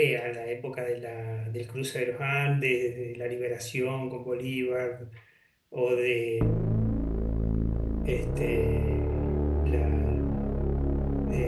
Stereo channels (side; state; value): both; identical; correlation 1.00